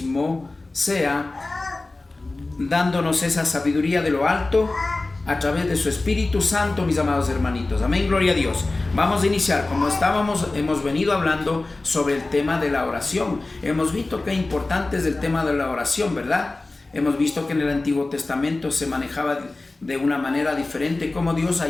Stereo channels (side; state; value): right; quieter; 3.2 dB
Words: sea dándonos esa sabiduría de lo alto a través de su Espíritu Santo, mis amados hermanitos. Amén, gloria a Dios. Vamos a iniciar. Como hemos venido hablando sobre el tema de la oración. Hemos visto qué importante es el tema de la oración, ¿verdad? Hemos visto que en el Antiguo Testamento se manejaba de una manera diferente, como Dios ha